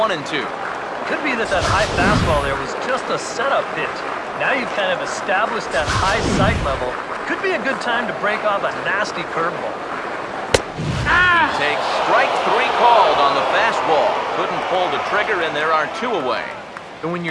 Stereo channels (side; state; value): both; identical; correlation 1.00